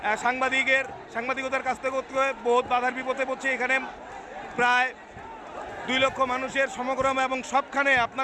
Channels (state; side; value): identical; both; correlation 1.00